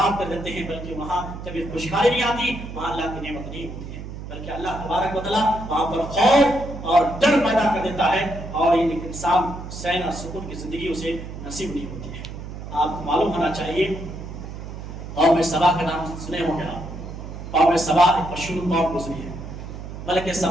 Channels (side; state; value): right; noise; hum, 10 dB below the sound